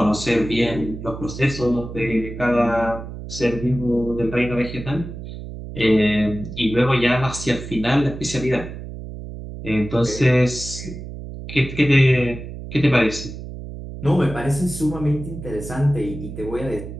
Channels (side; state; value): right; noise; hum, 10 dB below the sound